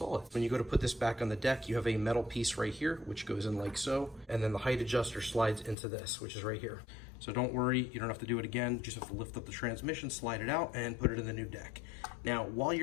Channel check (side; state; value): right; drops out; at 5.8 s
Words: it. When you go to put this back on the deck, you have a metal piece right here, which goes in like so. And then the height adjuster slides into this, which is right here. So don't worry, you don't have to do it again. You just have to lift up the transmission, slide it out, and put it in the new deck. Now, while